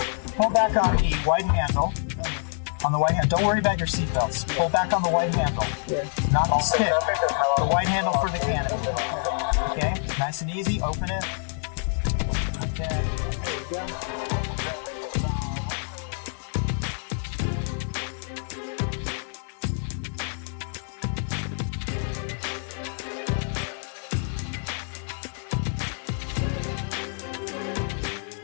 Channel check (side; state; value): right; silent; 60 dB below the other